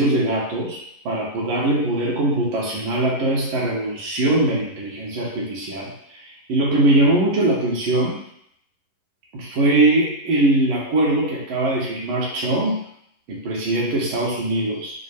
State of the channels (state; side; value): late; left; 11 ms